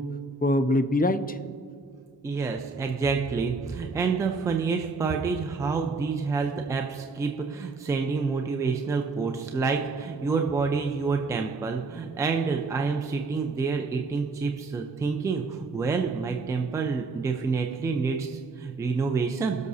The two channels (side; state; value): left; quieter; 3.6 dB